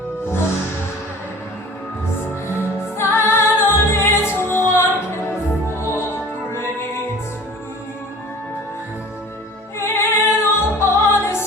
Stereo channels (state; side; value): normal; both; correlation 0.44